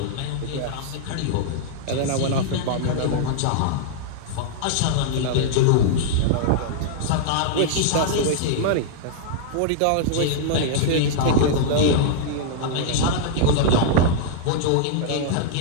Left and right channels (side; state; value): both; different; correlation -0.01